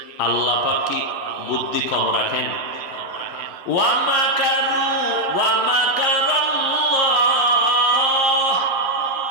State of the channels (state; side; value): late; right; 11 ms